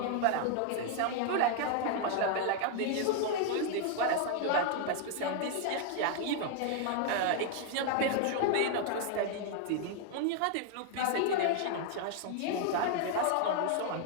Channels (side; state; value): both; different; correlation 0.00